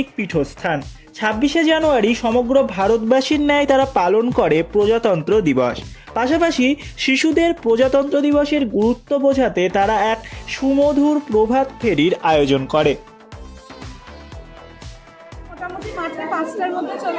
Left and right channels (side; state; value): both; identical; correlation 1.00